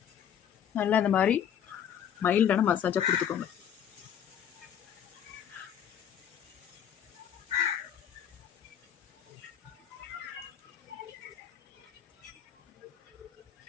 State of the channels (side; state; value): right; quieter; 9.2 dB